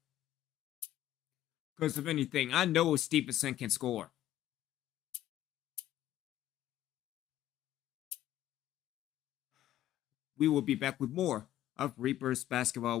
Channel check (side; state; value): right; quieter; 13.1 dB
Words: Because if anything, I know Stephenson can score. We will be back with more of Reapers basketball,